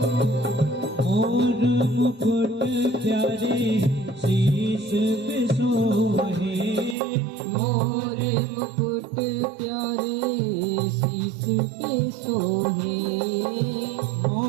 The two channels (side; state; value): left; drops out; at 7.0 s